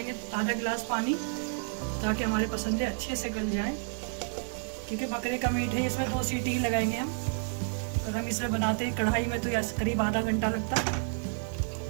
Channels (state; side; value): silent; left; 58 dB below the other